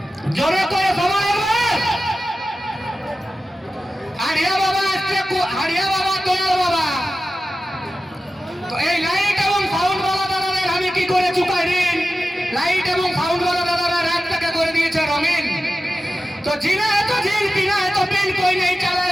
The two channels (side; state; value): both; normal; correlation 0.94